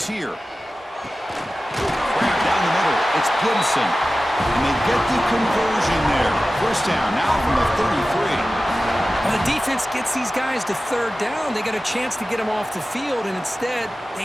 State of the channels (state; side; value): normal; both; correlation 0.95